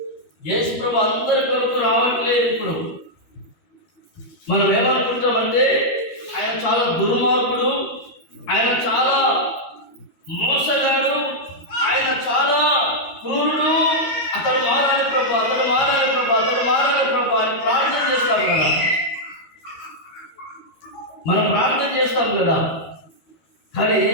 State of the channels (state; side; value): late; right; 13 ms